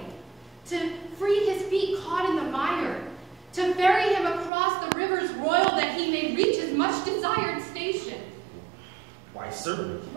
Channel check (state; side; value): drops out; left; at 4.5 s